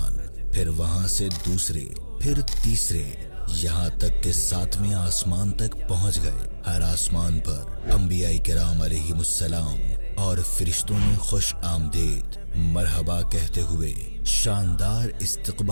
پھر وہاں سے دوسرے، پھر تیسرے، یہاں تک کہ 7ویں آسمان تک پہنچ گئے۔ ہر آسمان پر انبیاء کرام علیہم السلام اور فرشتوں نے خوش آمدید مرحبا کہتے ہوئے شاندار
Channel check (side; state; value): both; inverted; correlation -1.00